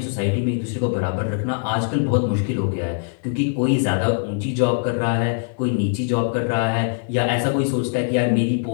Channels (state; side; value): silent; right; digital silence